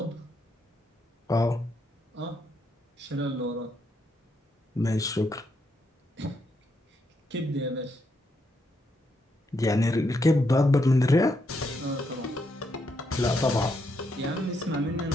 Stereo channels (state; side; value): normal; both; correlation 0.78